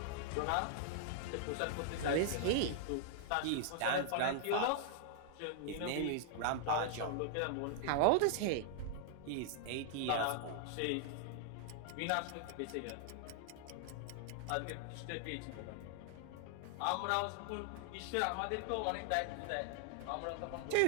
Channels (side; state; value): both; different; correlation -0.01